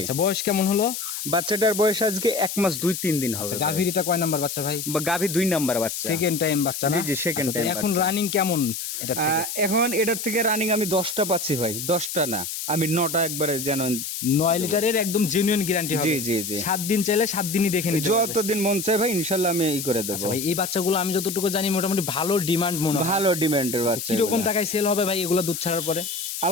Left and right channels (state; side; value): noise; left; hiss, 5 dB below the sound